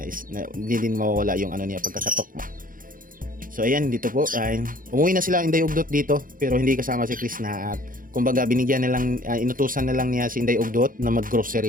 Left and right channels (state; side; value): late; left; 0.40 ms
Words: is na, hindi din mawawala yung niya pagkakatok mo. So ayan, dito po umuwi na sila Inday Ugdot dito pero hindi kasama si Krishna at kumbaga binigyan na lang inutusan na lang niya si Inday Ugdot na